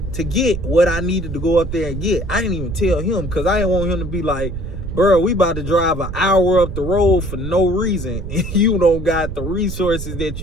to get what I needed to go up there and get. I didn't even tell him because I didn't want him to be like, bro, we about to drive an hour up the road for no reason. And you don't got the resources that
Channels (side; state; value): right; noise; rumble, 7 dB below the sound